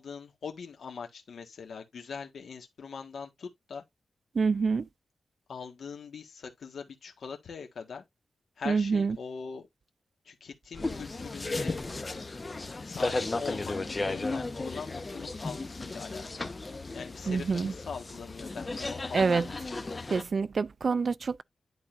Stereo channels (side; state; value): both; normal; correlation 0.90